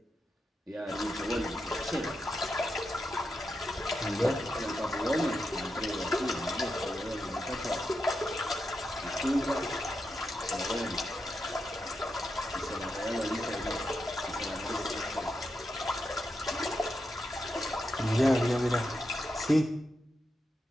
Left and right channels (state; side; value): normal; both; correlation 0.86